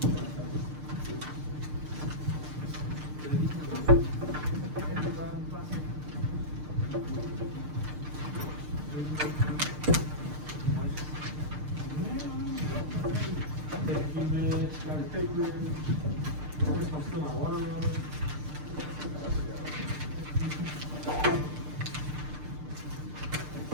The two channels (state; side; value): late; left; 6.6 ms